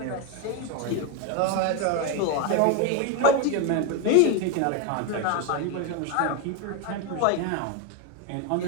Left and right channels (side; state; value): both; different; correlation 0.02